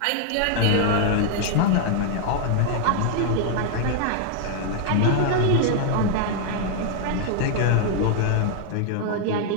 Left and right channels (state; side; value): different; both; correlation 0.00